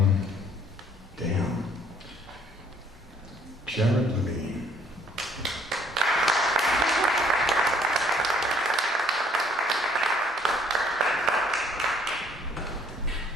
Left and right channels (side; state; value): both; normal; correlation 0.61